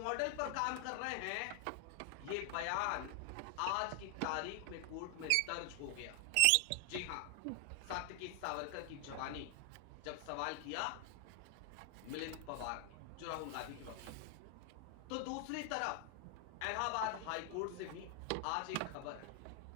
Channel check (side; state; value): both; different; correlation 0.00